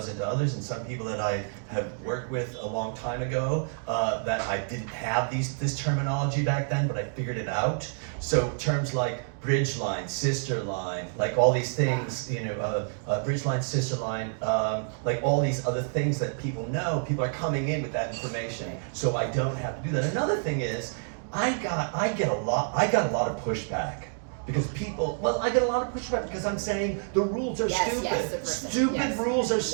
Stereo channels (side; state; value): left; silent; 59 dB below the other